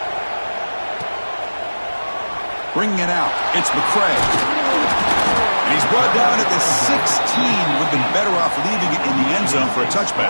Bringing it out, it's McCray. And he's brought down at the 16. Would have been better off leaving it in the end zone for a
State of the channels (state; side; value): inverted; both; correlation -1.00